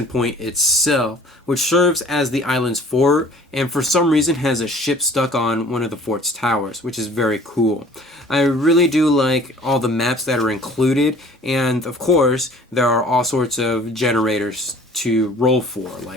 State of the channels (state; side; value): normal; both; correlation 0.51